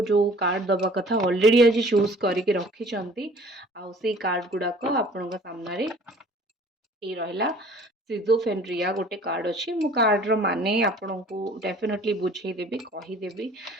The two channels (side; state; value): both; normal; correlation 0.51